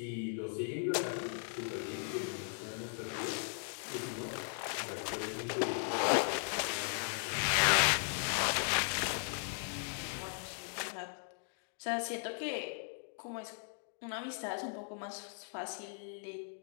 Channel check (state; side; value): silent; right; 53 dB below the other